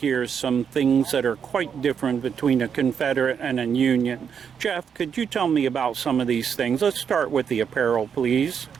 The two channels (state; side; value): quieter; left; 7.3 dB